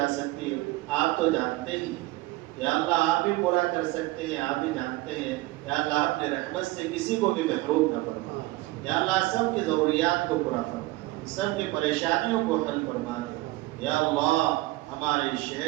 سکتی آپ تو جانتے ہی یا اللہ آپ بھی پورا کر سکتے ہیں آپ بھی جانتے ہیں یا اللہ اپنے رحمت سے کسی کو بھی محروم نہ فرما یا اللہ سب کی ضروریات کو پورا فرما سب کی پریشانیوں کو حل فرما دے یا اللہ ہمارے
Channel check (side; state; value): left; quieter; 19.6 dB